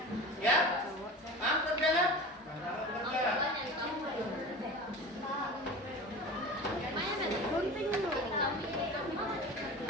Ya? Paham kerjanya? Gunting dulu.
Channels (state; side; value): normal; both; correlation 0.33